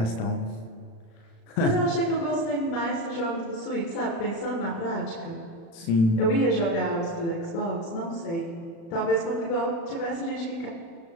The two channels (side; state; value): right; late; 36 ms